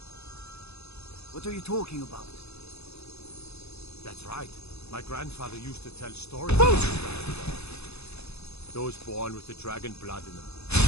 What are you talking about? That's right. My grandfather used to tell stories. Those born with the dragon blood in them.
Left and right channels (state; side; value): late; right; 0.79 ms